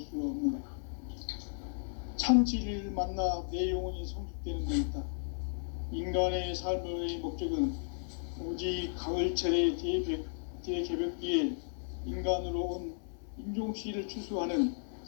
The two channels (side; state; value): right; silent; 55 dB below the other